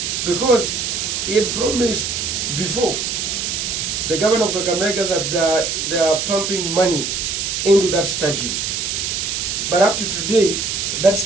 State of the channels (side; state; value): right; noise; hiss, 2 dB below the sound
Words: because he had promised before the governor of Kakamega that they are pumping money into that stadium. But up to today, that